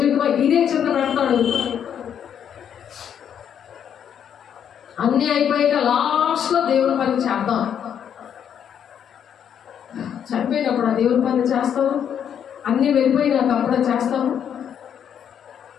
ఇదే చింత పెడతాడు. అన్నీ అయిపోయాక లాస్ట్లో దేవుని పని చేద్దాం. చనిపోయినప్పుడు ఆ దేవుని పని చేస్తాము. అన్నీ వెళ్ళిపోయినాక అప్పుడే చేస్తాము.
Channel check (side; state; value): right; quieter; 8.7 dB